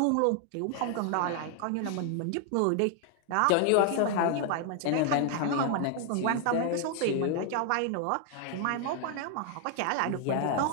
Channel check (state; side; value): different; both; correlation 0.00